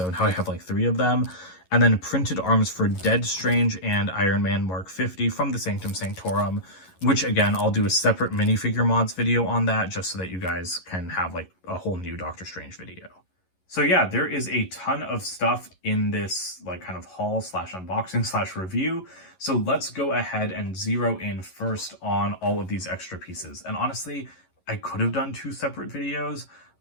now I have like 3 of them. And then printed arms for Dead Strange and Iron Man Mark 50 from the Sanctum Sanctorum, which again, I'll do a separate minifigure mods video on that just so that you guys can have like a whole new Doctor Strange video. So yeah, there is a ton of stuff in this like kind of haul slash unboxing slash review. So let's go ahead and zero in first on all of these extra pieces. And honestly, I could have done 2 separate videos,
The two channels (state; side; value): late; right; 11 ms